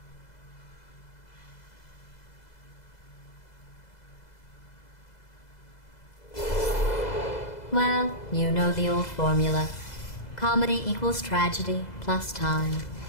Well, you know the old formula. Comedy equals tragedy plus time.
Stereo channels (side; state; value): right; late; 2.0 ms